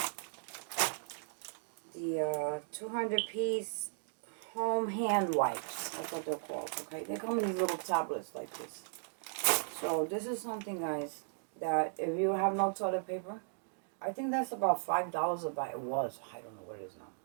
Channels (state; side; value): silent; left; digital silence